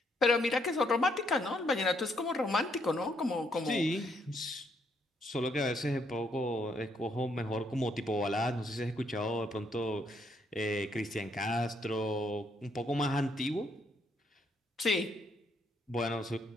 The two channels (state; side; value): normal; both; correlation 0.73